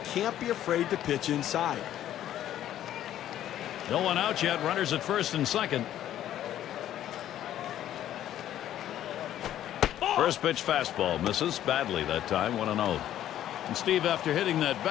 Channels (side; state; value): right; quieter; 11.9 dB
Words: can't be afraid to pitch inside. No one out yet. Runners at first and second. First pitch fastball misses badly that time. 1-0. And Steve, after hitting that